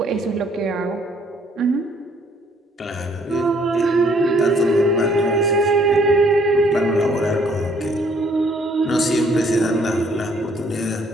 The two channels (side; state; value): both; normal; correlation 0.63